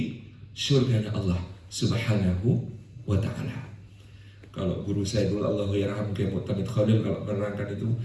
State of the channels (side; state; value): both; identical; correlation 1.00